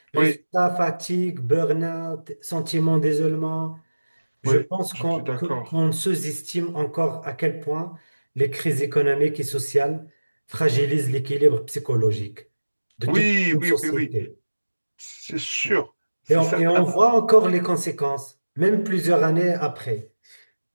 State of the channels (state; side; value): inverted; both; correlation -1.00